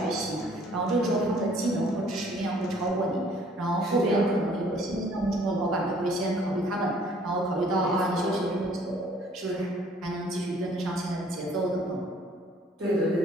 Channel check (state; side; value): normal; both; correlation 0.58